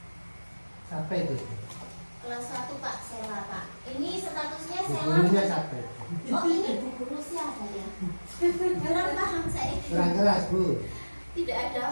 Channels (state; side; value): inverted; both; correlation -1.00